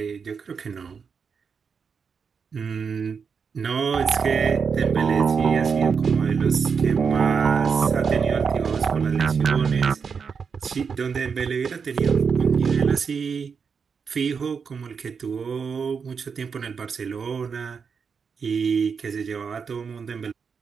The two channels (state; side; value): quieter; left; 6.0 dB